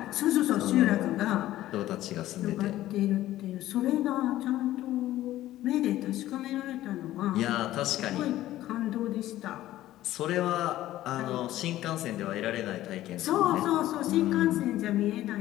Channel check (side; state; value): right; quieter; 14.6 dB